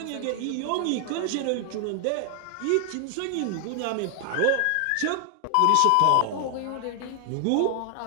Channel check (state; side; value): different; both; correlation 0.00